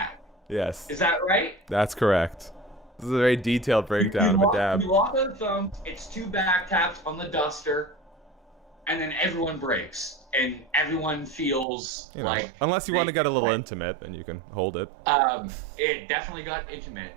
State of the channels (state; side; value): drops out; left; at 11.7 s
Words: Yes. Is that right? That's correct. This is a very detailed breakdown of a dab. You lock on the thumbs. It's 2 back taps on the duster, and then everyone breaks. And everyone feels like... Unless you want to get a little intimate, then you can hold it. It definitely got intimate.